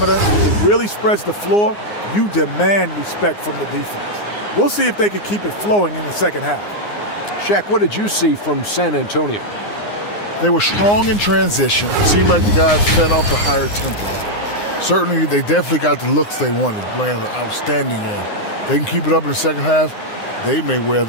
it really spreads the floor. You demand respect from the defense. We'll see if they can keep it flowing in the second half. Shaq, what did you see from San Antonio? They were strong in transition. It seemed like the guys fed off the higher tempo. Certainly, they definitely got the looks they wanted, playing an outstanding game. They can keep it up in the second half, they may wear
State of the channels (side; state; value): right; late; 9.7 ms